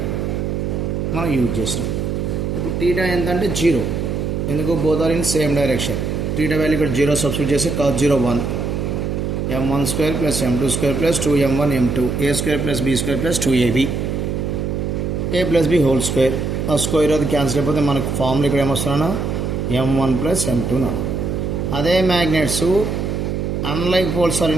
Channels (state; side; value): noise; right; hum, 2 dB below the sound